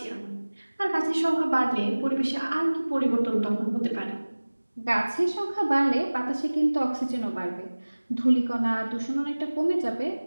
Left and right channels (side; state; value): both; inverted; correlation -1.00